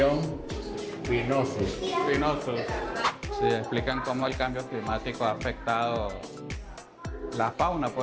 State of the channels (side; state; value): both; identical; correlation 1.00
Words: spinosus. Espinosos. Sí, explican cómo el cambio climático ha afectado la fauna,